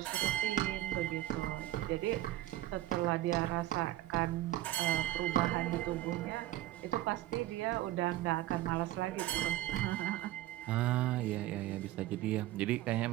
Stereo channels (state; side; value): quieter; left; 14.9 dB